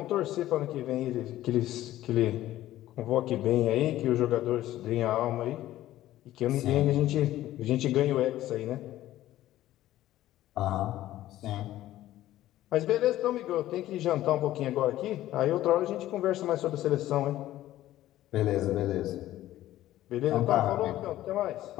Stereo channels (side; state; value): right; quieter; 14.3 dB